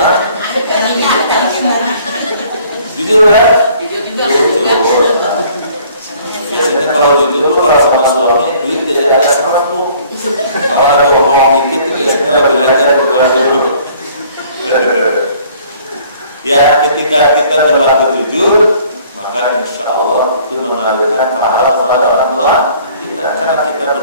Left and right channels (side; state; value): both; inverted; correlation -0.56